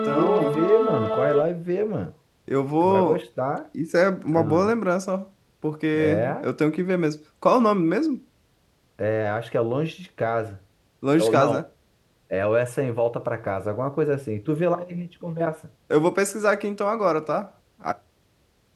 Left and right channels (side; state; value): both; identical; correlation 1.00